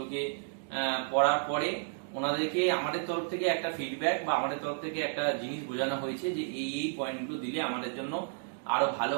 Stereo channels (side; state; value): left; silent; digital silence